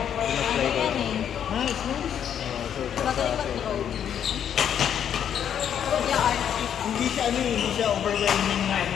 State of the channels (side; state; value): right; quieter; 9.1 dB